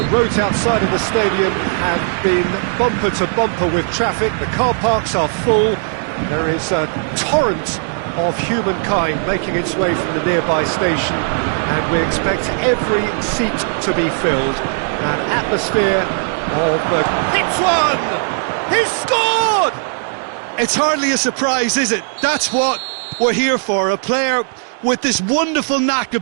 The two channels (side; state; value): left; silent; 68 dB below the other